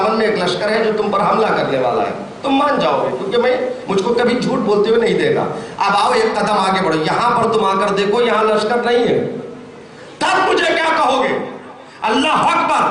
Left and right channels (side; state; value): both; identical; correlation 1.00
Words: میں ایک لشکر ہے جو تم پر حملہ کرنے والا ہے, تم مان جاؤ گے کیونکہ مجھ کو کبھی جھوٹ بولتے ہوئے نہیں دیکھا. اب آؤ ایک قدم آگے بڑھو, یہاں پر تم آ کر دیکھو یہاں لشکر نہیں ہے, تب مجھے کیا کہو گے؟ اللہ